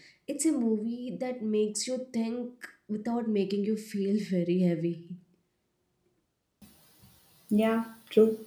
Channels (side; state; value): both; identical; correlation 1.00